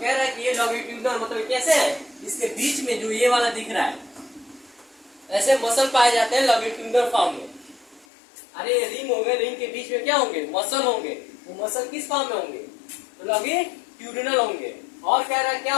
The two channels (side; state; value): right; drops out; at 8.1 s